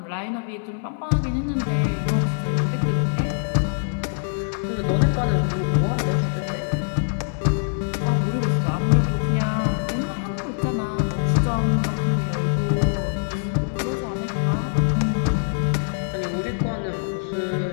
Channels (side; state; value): right; silent; 58 dB below the other